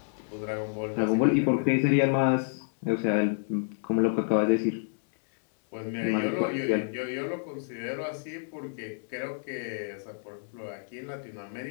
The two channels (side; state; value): right; silent; digital silence